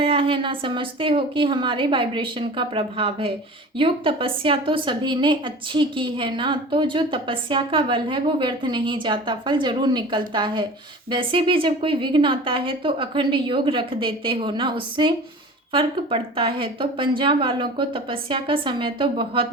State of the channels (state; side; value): normal; both; correlation 0.39